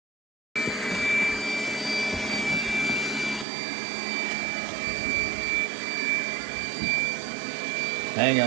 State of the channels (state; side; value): drops out; left; at 3.5 s